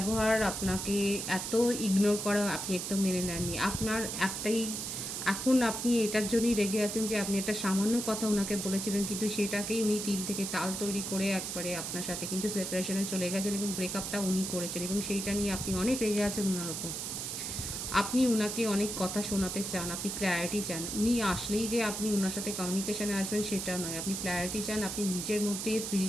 আপনাকে এত ইগনোর করা আপনি একদম মেনে নেননি। আপনার একটাই এখন আপনি এটার জন্যই রেগে আছেন যে আপনি একটা সামান্য কথা উনাকে বলেছিলেন, কিন্তু সেটাকেই উনি তিল থেকে তাল তৈরি করে একবারে আপনার সাথে কিন্তু সেপারেশনে চলে গেছেন এবং ব্রেকআপটা উনি করেছেন এবং সেইটা নিয়ে আপনি অনেক রেগে আছেন উনার ওপর। আপনি উনাকে অনেক কথা শোনাতে চান, আপনি ক্ল্যারিটি চান। উনি আসলেই যে আপনি উনার সাথে কমিউনিকেশনে আসবেন সেটা নয়। আপনি ক্ল্যারিটি চান, আপনি নিজের মধ্যে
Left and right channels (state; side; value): noise; right; hiss, 4 dB below the sound